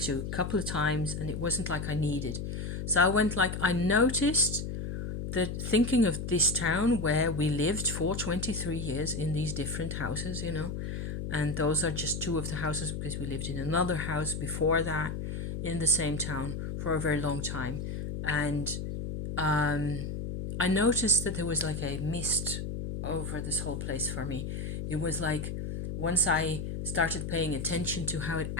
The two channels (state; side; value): noise; left; hum, 4 dB below the sound